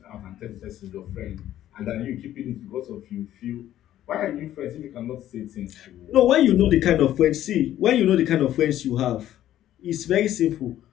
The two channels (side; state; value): right; quieter; 12.5 dB